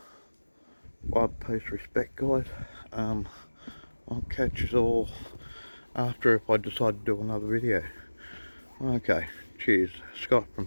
wide post respect, guys. I'll catch you all after, if I decide to do another video. Okay, cheers. Scott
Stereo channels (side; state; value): both; inverted; correlation -1.00